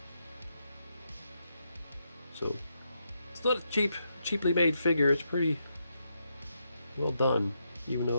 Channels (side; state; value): both; inverted; correlation -0.81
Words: So, it's not a cheaply made figure. It's pretty well done, even